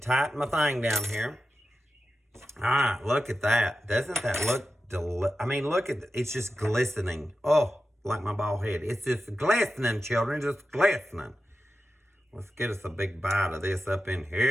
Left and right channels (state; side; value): normal; both; correlation 0.92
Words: my thing down here. All right, look at that. Doesn't that look I mean, look at it's just glistening. Oh, like my bald head. It's just glistening, children, just glistening. Let's get us a big bite of this up in